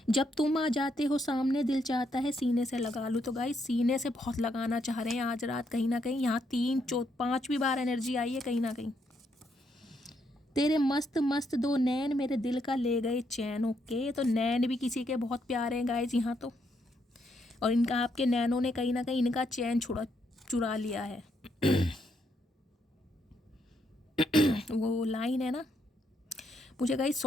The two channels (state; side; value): normal; both; correlation 0.76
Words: जब तुम आ जाते हो सामने, दिल चाहता है सीने से लगा लूँ। तो गाइस सीने से बहुत लगाना चाह रहे हैं आज रात कहीं ना कहीं। यहाँ 3, 4, 5वीं बार एनर्जी आई है कहीं ना कहीं। तेरे मस्त मस्त 2 नैन मेरे दिल का ले गए चैन। ओके, तो नैन भी किसी के बहुत प्यारे हैं गाइस यहाँ तो। और इनका आपके नैनों ने कहीं ना कहीं इनका चैन चुरा लिया है। वो लाइन है ना, मुझे गाइस